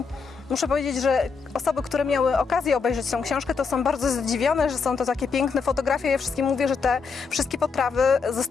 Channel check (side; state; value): right; quieter; 5.2 dB